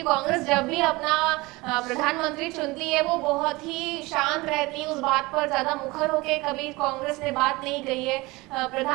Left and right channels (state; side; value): quieter; left; 22.5 dB